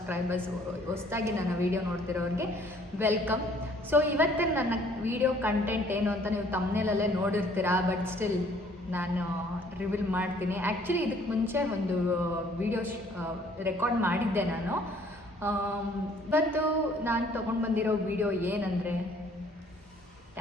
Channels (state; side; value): normal; both; correlation 0.59